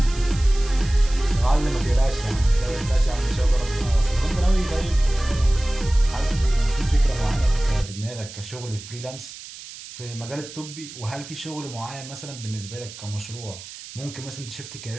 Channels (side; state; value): right; noise; hiss, 14 dB below the sound